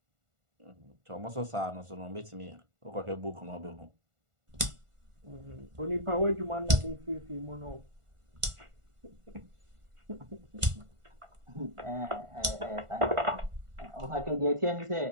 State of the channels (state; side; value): late; left; 1.4 ms